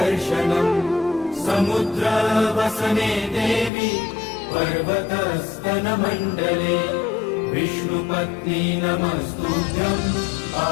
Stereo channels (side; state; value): right; drops out; at 3.7 s